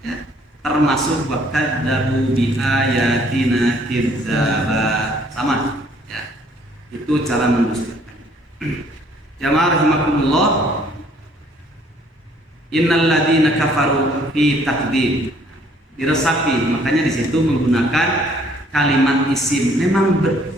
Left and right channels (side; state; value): both; normal; correlation 0.61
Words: ya, termasuk wakadzabu bi ayatina kidzaba, sama, ya. Itu cara mendustakan. Jamaah rahimakumullah, innal ladzina kafaru fi takdzib, diresapi, makanya di situ menggunakan kalimat isim. Memang